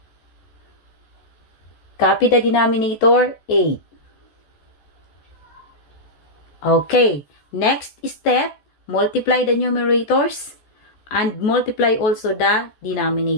Copy the denominator 8. Okay, next step, multiply the numerators and multiply also the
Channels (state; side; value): late; right; 14 ms